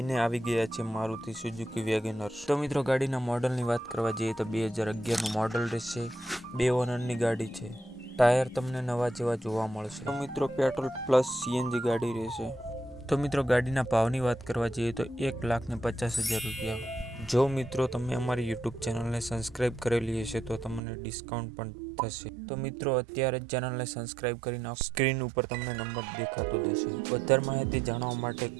આવી ગયા છે મારુતિ સુઝુકી વેગેનર। તો મિત્રો ગાડીના મોડલની વાત કરવા જઈએ તો 2011નું મોડલ રહેશે, 2 ઓનરની ગાડી છે। ટાયર તમને નવા જેવા જોવા મળશે। તો મિત્રો પેટ્રોલ પ્લસ સીએનજી ગાડી રહેશે। તો મિત્રો ગાડીના ભાવની વાત કરવા જઈએ તો 1,50,000 રૂપિયા। જો મિત્રો તમે અમારી યુટ્યુબ ચેનલને સબસ્ક્રાઈબ કરેલી હશે તો તમને ડિસ્કાઉન્ટ પણ થશે। તો મિત્રો અત્યારે જ ચેનલને સબસ્ક્રાઈબ કરી નાખો, સ્ક્રીન ઉપર તમને નંબર દેખાતો જશે। વધારે માહિતી જાણવા માટે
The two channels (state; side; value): drops out; left; at 20.8 s